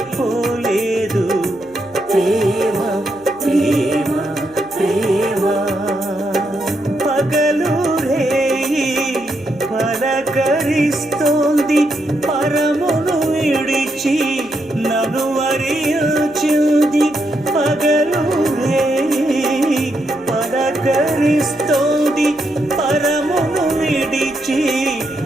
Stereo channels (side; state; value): right; noise; hum, 27 dB below the sound